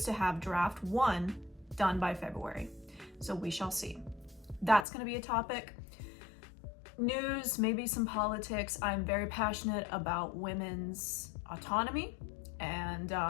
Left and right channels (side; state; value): right; drops out; at 4.9 s